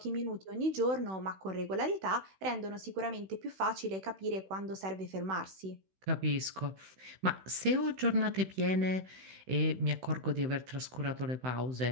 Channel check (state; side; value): late; left; 16 ms